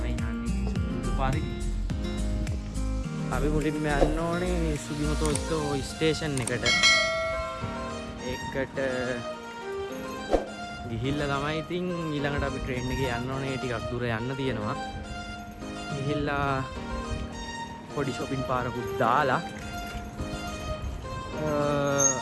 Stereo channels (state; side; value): identical; both; correlation 1.00